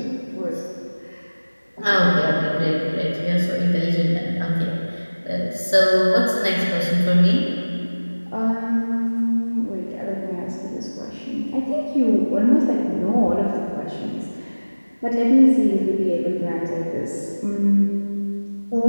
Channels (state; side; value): inverted; both; correlation -1.00